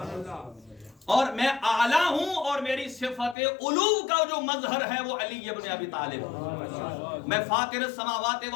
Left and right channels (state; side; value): drops out; right; at 3.4 s